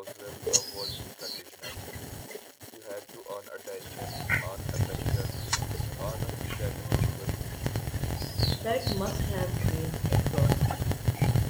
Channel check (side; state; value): both; identical; correlation 1.00